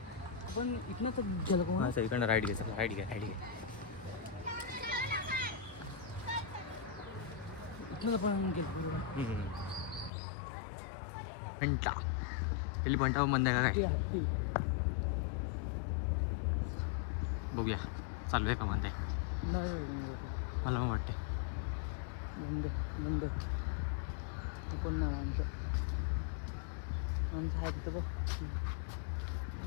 आपण इथनं तर गेलो हां सर इकडनं राईट घे चला राईट घे राईट घे इथनं पण गेलो घंटा पहिली घंटा बंद आहे का काय बघूया चालू आहे का बंद आहे मला मग वाटते बंद बंद कोण नाव आमचं आहे तिथं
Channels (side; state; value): right; drops out; at 10.1 s